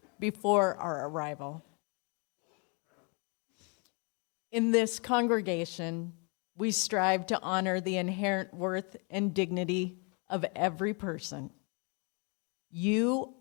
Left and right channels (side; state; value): right; quieter; 34.9 dB